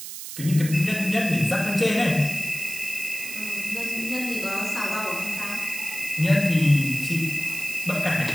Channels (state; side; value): noise; right; hiss, 9 dB below the sound